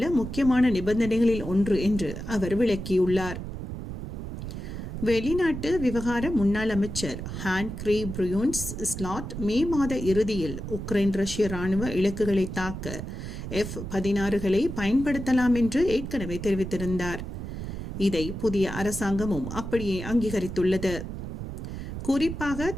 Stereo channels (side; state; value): right; noise; rumble, 7 dB below the sound